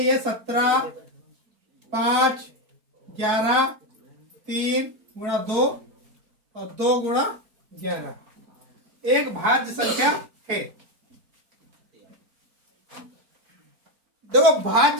है 17, 5, 11, 3 गुणा 2 और 2 गुणा 11 एक भाज्य संख्या है। देखो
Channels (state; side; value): late; left; 4.5 ms